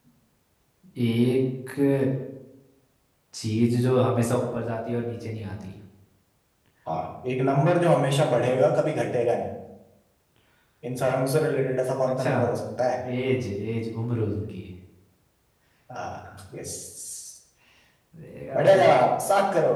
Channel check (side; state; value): both; identical; correlation 1.00